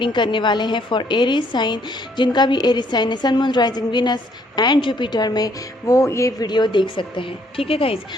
करने वाले हैं फॉर एरीज साइन। जिनका भी एरीज साइन है, sun moon rising Venus and Jupiter में, वो ये वीडियो देख सकते हैं। ठीक है गाइज़,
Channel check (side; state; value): both; normal; correlation 0.67